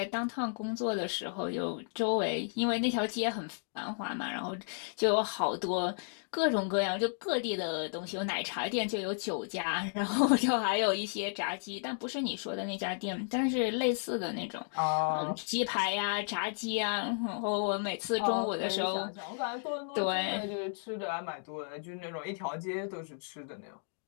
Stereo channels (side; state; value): right; silent; digital silence